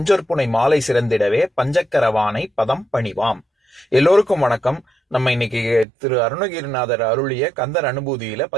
மாலை சிறந்திடவே பஞ்சக்கரவானை பதம் பணிவாம். எல்லோருக்கும் வணக்கம். நம்ம இன்னைக்கு திரு அருணகிரிநாதர் அருளிய கந்தர் அனுபூதியில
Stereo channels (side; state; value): left; drops out; at 5.9 s